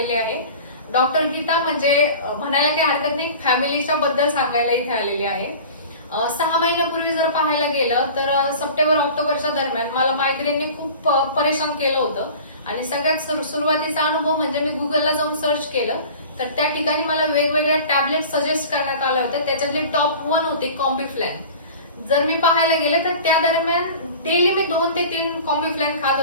आहे। डॉक्टर गीता म्हणजे म्हणायला काही हरकत नाही, फॅमिलीच्या बद्दल सांगायला इथे आलेली आहे। 6 महिन्यापूर्वी जर पाहायला गेलं तर सप्टेंबर ऑक्टोबरच्या दरम्यान मला मायग्रेनने खूप परेशान केलं होतं आणि सगळ्यात सुरुवातीचा अनुभव म्हणजे मी गुगलला जाऊन सर्च केलं तर त्या ठिकाणी मला वेगवेगळ्या टॅबलेट सजेस्ट करण्यात आल्या होत्या। त्याच्यातली टॉप 1 होती कॉम्बिफ्लॅन। जर मी पाहायला गेले तर त्या दरम्यान डेली मी 2 ते 3 कॉम्बिफ्लॅन खात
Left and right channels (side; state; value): both; inverted; correlation -0.40